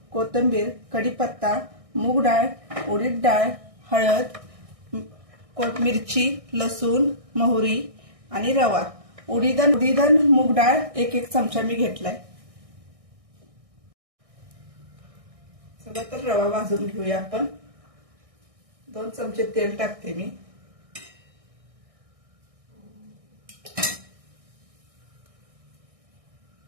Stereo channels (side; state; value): left; late; 1.6 ms